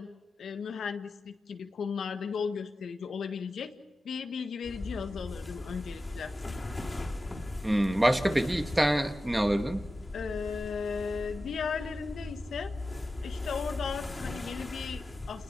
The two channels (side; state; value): both; normal; correlation 0.93